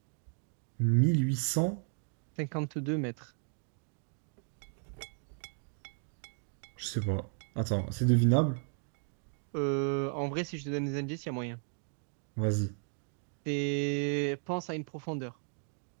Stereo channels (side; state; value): left; silent; 54 dB below the other